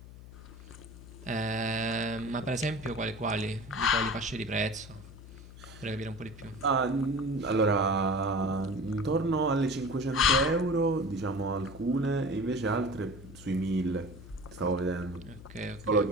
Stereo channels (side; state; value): left; noise; hum, 16 dB below the sound